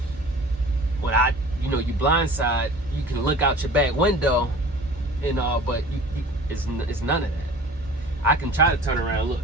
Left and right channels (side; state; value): both; normal; correlation 0.43